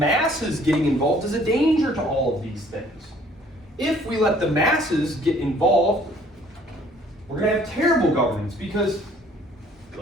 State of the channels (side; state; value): both; normal; correlation 0.58